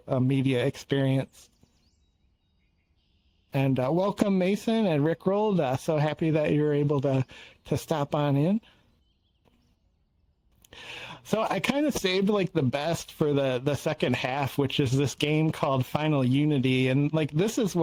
a media experience. And welcome, Mason and Rickrolled. So happy that you were able to stop on in. So I kind of saved like the best for the second half, which is this game called Final Unity. And like this is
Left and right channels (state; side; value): identical; both; correlation 1.00